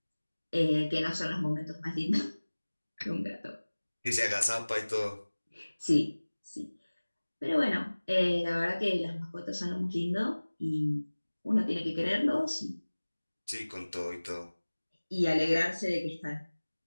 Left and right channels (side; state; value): both; inverted; correlation -1.00